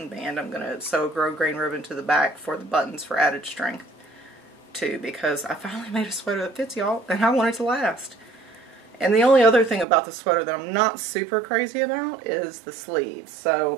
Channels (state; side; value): drops out; left; at 9.9 s